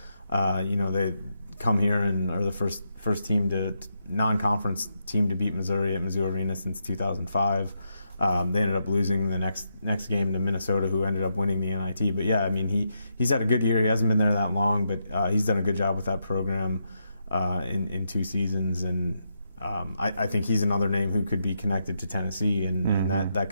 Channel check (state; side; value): inverted; both; correlation -0.81